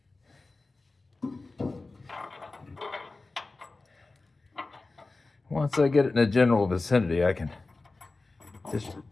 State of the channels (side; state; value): right; quieter; 3.5 dB